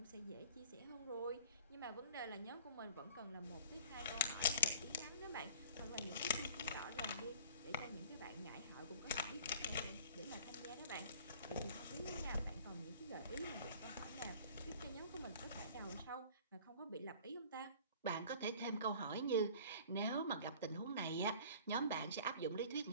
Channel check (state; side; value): inverted; both; correlation -0.46